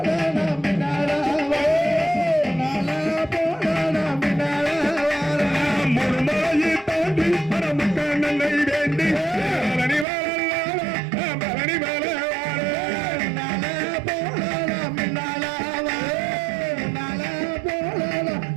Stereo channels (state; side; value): drops out; left; at 10.1 s